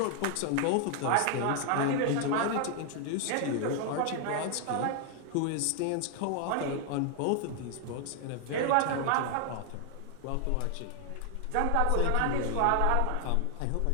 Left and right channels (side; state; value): both; different; correlation 0.00